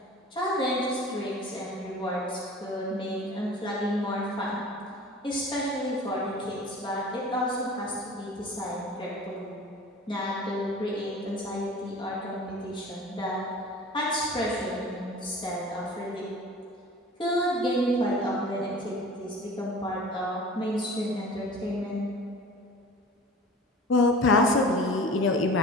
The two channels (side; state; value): both; normal; correlation 0.41